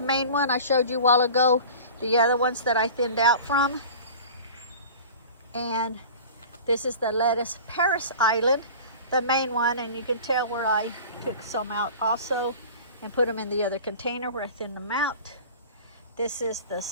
one I showed you a while ago. The other ones that I thinned out from. And this is the lettuce Paris Island, the main one. And you can tell where I took some out also and put them in the other container where I thinned them out. This is the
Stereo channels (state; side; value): inverted; both; correlation -0.38